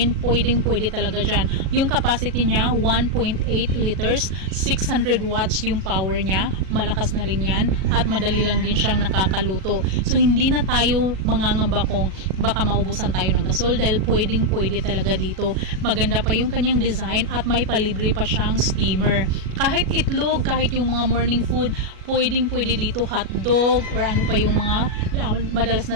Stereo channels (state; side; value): late; left; 37 ms